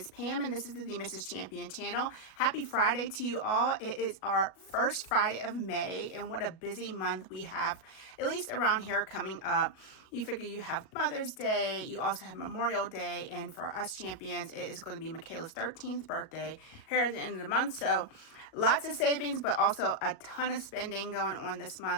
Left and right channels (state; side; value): late; right; 38 ms